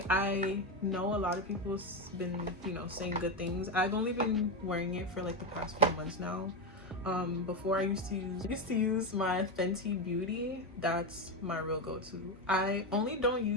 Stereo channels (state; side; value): normal; both; correlation 0.11